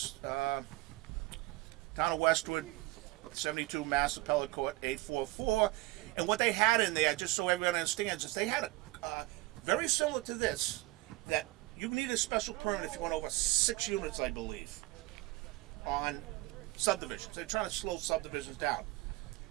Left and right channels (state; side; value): quieter; left; 20.2 dB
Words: Town of Westwood, 72 Mass Appellate Court 844. And what they had in there, just so everyone understands, is they had a very similar to this, that you need a special permit if you went over 6 units, I believe, on subdivisions. They're trying to slow subdivisions down.